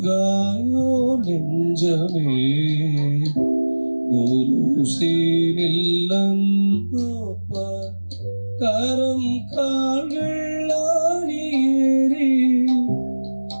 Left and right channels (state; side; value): inverted; both; correlation -1.00